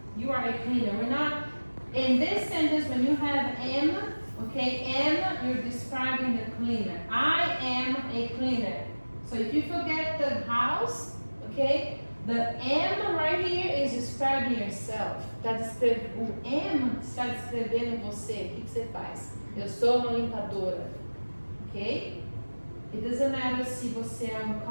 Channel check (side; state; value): both; inverted; correlation -1.00